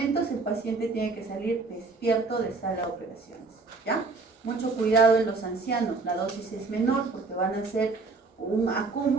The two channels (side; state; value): left; quieter; 4.0 dB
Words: el paciente tiene que salir despierto de sala de operaciones, ¿ya? Mucho cuidado en los ancianos, la dosis es menor porque van a ser un